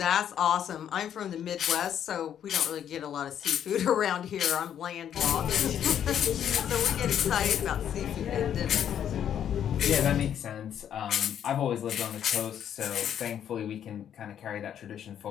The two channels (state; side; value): quieter; right; 9.5 dB